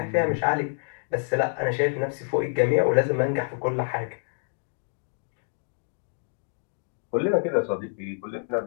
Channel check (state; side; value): silent; right; 60 dB below the other